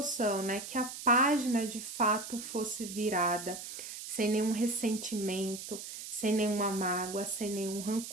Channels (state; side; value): noise; right; hiss, 9 dB below the sound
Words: né? Que a página de fato fosse virada, sem nenhum ressentimento, sem nenhuma mágoa, sem nenhum